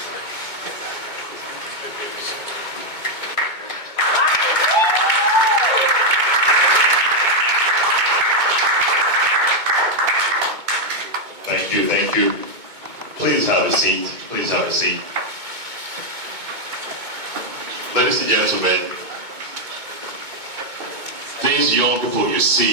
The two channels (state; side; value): late; left; 2.2 ms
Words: Thank you. Please have a seat. Please have a seat. Ladies and gentlemen, these young people you